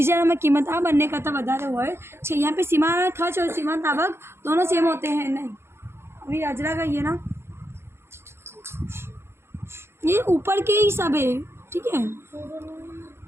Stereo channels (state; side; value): late; left; 0.12 ms